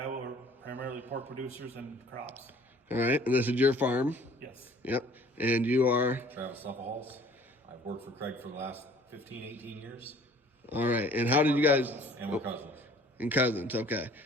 We're primarily pork producers and crops. All right, and this is your farm? Yes. Yep. And you are? Travis Leppehalls. I've worked for Craig for the last 15, 18 years. All right, and how did you guys? And we're cousins. And cousins, okay.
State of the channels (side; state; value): both; normal; correlation 0.53